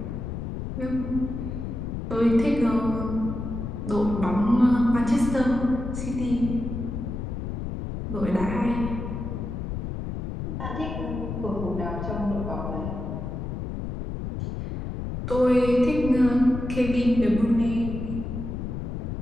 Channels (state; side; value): noise; left; rumble, 5 dB below the sound